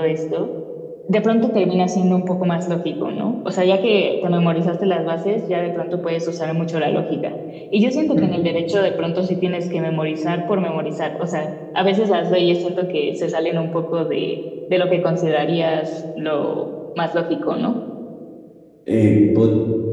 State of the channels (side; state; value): both; identical; correlation 1.00